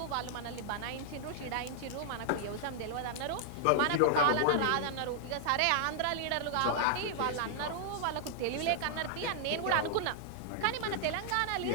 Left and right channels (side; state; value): both; different; correlation -0.01